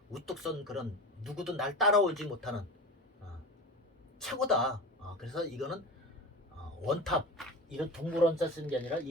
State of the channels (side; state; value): both; normal; correlation 0.31